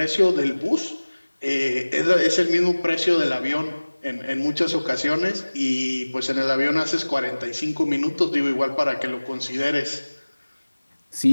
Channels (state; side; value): inverted; both; correlation -1.00